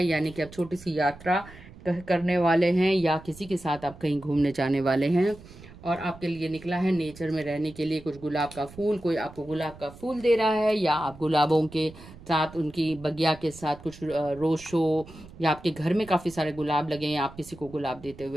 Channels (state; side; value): noise; right; rumble, 19 dB below the sound